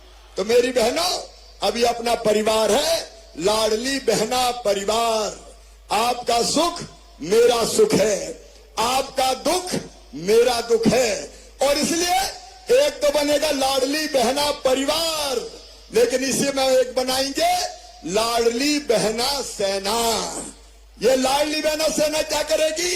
तो मेरी बहनों, अभी अपना परिवार है, लाडली बहना परिवार। आपका सुख मेरा सुख है, आपका दुख मेरा दुख है, और इसलिए एक तो बनेगा लाडली बहना परिवार, लेकिन इसी में एक बनाएंगे लाडली बहना सेना। ये लाडली बहना सेना क्या करेगी?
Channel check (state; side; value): identical; both; correlation 1.00